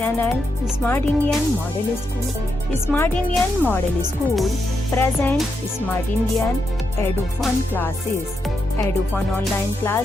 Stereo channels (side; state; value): both; normal; correlation 0.83